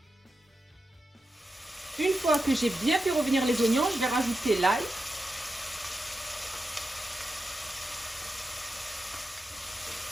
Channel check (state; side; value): normal; both; correlation 0.89